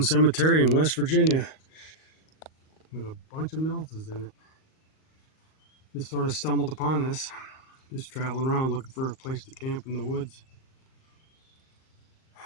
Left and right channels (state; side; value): late; right; 38 ms